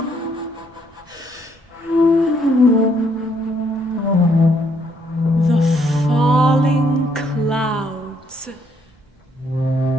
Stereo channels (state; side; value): normal; both; correlation 0.70